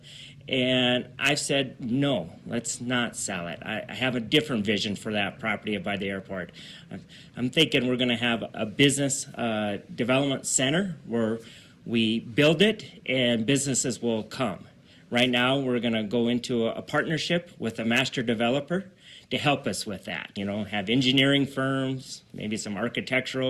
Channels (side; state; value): both; identical; correlation 1.00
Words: And I've said, no, let's not sell it. I have a different vision for that property by the airport. I'm thinking we're going to have a business development center where we build it and businesses will come. Right now, we're going to go into a partnership with a master developer to help us with that. Have engineering firms, maybe some